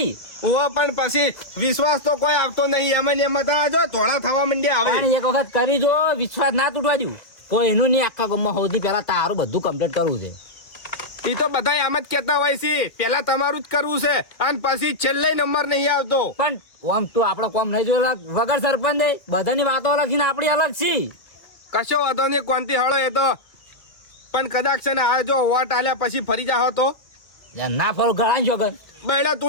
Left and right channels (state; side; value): late; right; 1.9 ms